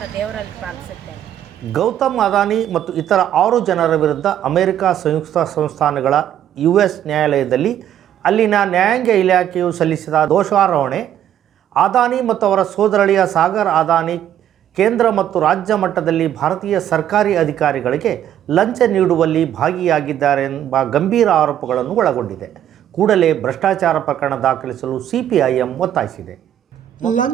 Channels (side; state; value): left; quieter; 10.8 dB